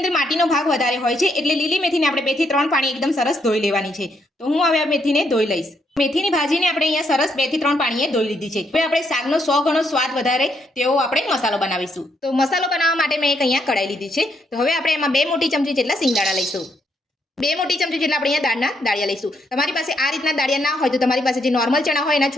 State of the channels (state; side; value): normal; both; correlation 0.75